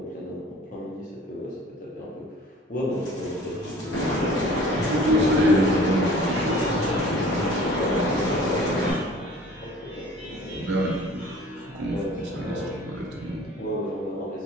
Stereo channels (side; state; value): both; normal; correlation 0.48